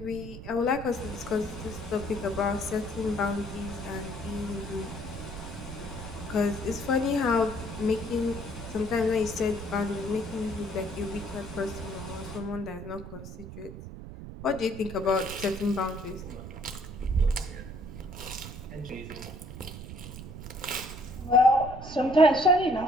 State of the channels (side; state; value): right; noise; rumble, 11 dB below the sound